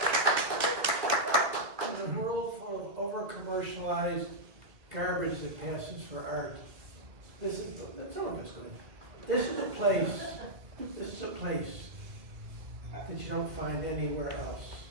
a world full of over-commercialized garbage that passes for art, that's all I'm just going. This is a place that you don't find anywhere else.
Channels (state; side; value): late; left; 1.5 ms